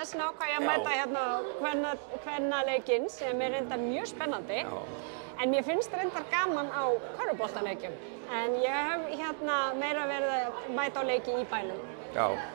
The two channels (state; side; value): silent; left; digital silence